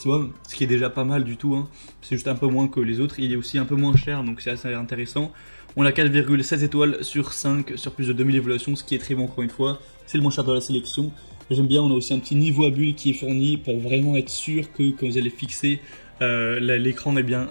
ce qui est déjà pas mal du tout, hein. C'est juste un peu moins que les autres, il est aussi un peu moins cher donc c'est assez intéressant. On a 4,7 étoiles sur 5 sur plus de 2000 évaluations, ce qui est très bon encore une fois, c'est le moins cher de la sélection. J'aime bien, on a aussi un petit niveau à bulle qui est fourni pour vraiment être sûr que quand vous allez fixer l'écran, eh bien,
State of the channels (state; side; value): inverted; both; correlation -1.00